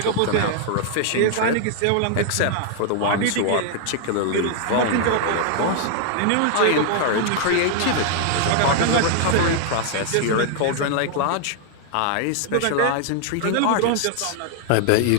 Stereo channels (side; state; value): both; different; correlation -0.01